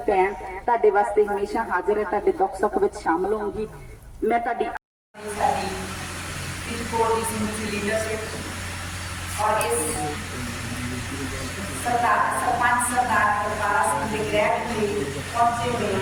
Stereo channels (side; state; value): both; identical; correlation 1.00